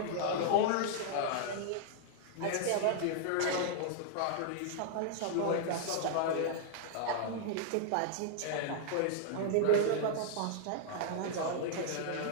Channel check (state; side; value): different; both; correlation -0.01